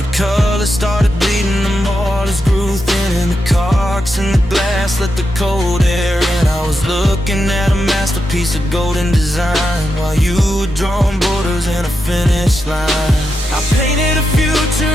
colors started bleeding, the mortars grew thin, and the caulks in the glass let the cold air in. I was looking at a masterpiece of golden design while you were drawing borders and a finish line. I painted a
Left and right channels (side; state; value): both; normal; correlation 0.86